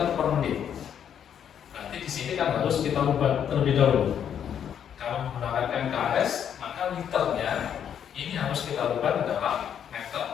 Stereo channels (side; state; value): right; quieter; 8.8 dB